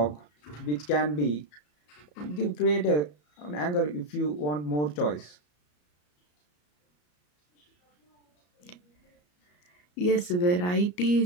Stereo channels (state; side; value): late; right; 34 ms